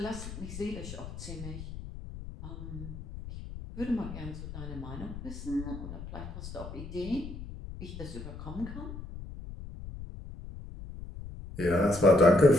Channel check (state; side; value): noise; left; rumble, 10 dB below the sound